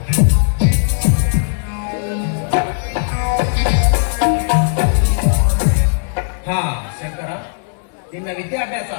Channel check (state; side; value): silent; right; digital silence